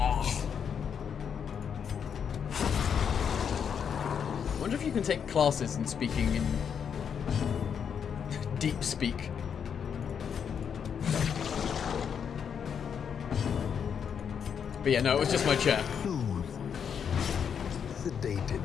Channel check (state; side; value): quieter; right; 7.4 dB